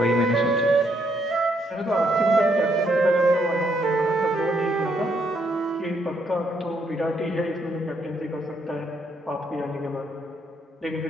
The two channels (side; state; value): both; normal; correlation 0.73